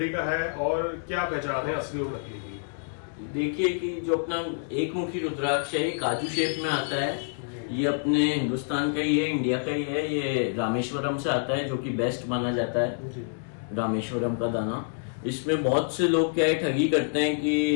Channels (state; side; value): silent; right; digital silence